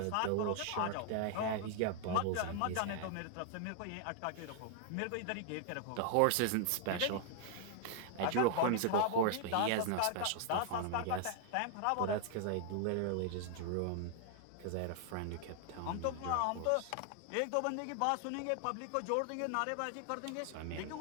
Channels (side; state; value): both; different; correlation 0.00